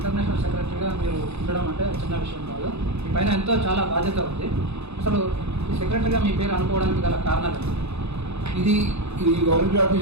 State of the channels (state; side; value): late; left; 0.80 ms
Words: సెక్రటరీగా మీరు ఉండడం అంటే చిన్న విషయం కాదు. మీ పైన ఎంతో చాలా బాధ్యత ఉంది. అసలు ఈ సెక్రటరీగా మీ పేరు అనుకోవడానికి గల కారణాలు ఇది గవర్నమెంట్